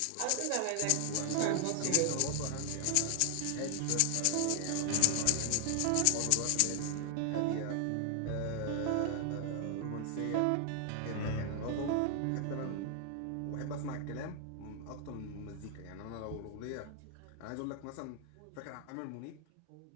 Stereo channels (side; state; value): both; different; correlation 0.00